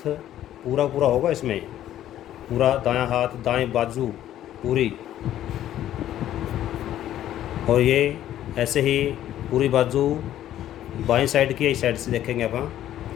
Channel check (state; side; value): quieter; right; 12.2 dB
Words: पूरा पूरा होगा इसमें, पूरा दायां हाथ, दाएं बाजू पूरी, और ये ऐसे ही पूरी बाजू बाईं साइड की इस साइड से देखेंगे अपन।